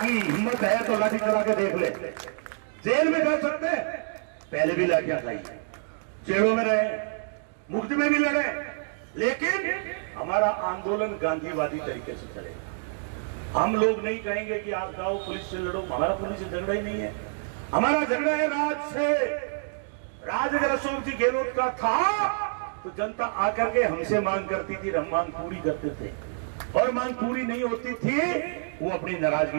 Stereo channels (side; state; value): left; silent; digital silence